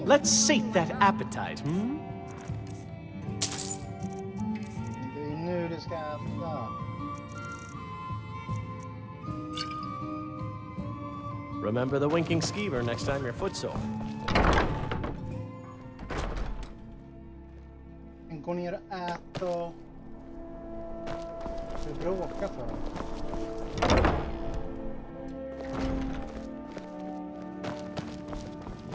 Let's sate that appetite, hmm? Det är nu det ska äta. Remember the Winking Skeever next time you're footsore. Gå ner och äta. Du bråkar för.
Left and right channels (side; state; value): both; identical; correlation 1.00